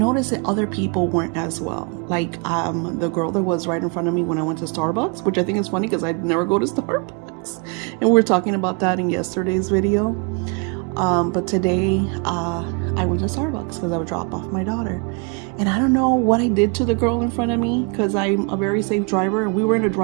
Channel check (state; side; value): quieter; left; 33.9 dB